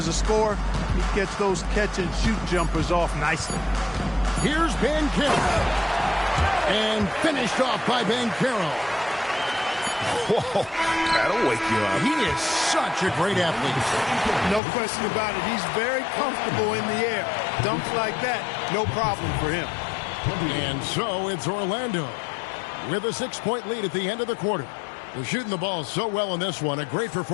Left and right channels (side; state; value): right; drops out; at 14.6 s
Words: a scorer. He gets those catch-and-shoot jumpers off nicely. Here's Banchero. And finished off by Banchero. Whoa, that'll wake you up. He is such a great athlete. No question about it. He's very comfortable in the air. Dunks like that, no problem for him. And so it's Orlando with a 6-point lead at the end of the quarter. They're shooting the ball so well in this one. A great